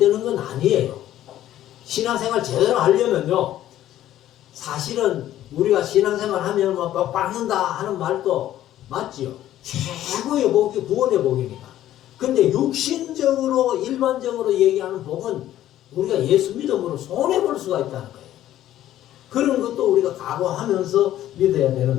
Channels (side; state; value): right; quieter; 12.9 dB